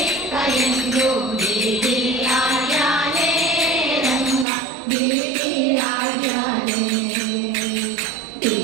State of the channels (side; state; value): left; drops out; at 4.5 s